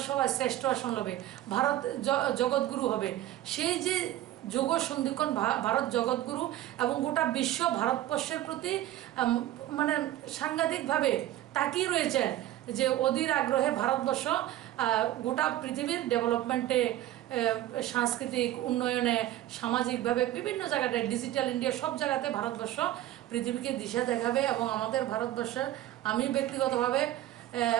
সভায় শ্রেষ্ঠ আসন হবে, ভারত জগৎগুরু হবে। সেই যে যুগ সন্ধিক্ষণ, ভারত জগৎগুরু, এবং গোটা বিশ্ব ভারতবর্ষের প্রতি মানে সাংঘাতিকভাবে তাকিয়ে রয়েছে, যে অধীর আগ্রহে ভারতবর্ষ গোটা পৃথিবীর ডেভেলপমেন্টে, সাংস্কৃতিক উন্নয়নে, সামাজিকভাবে বিভিন্ন জায়গাটায়, ডিজিটাল ইন্ডিয়া, সব জায়গাতে ভারতবর্ষ পৃথিবীকে দিশা দেখাবে। এবং আমাদের ভারতবর্ষের, আমি ব্যক্তিগতভাবে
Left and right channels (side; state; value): left; quieter; 14.0 dB